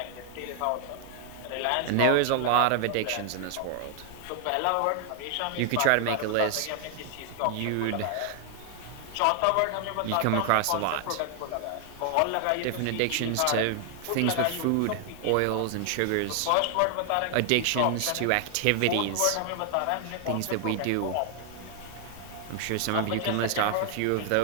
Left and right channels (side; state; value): both; different; correlation 0.00